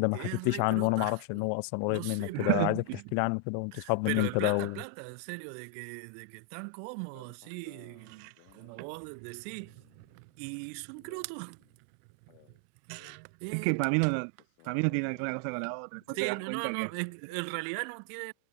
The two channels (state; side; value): different; both; correlation 0.00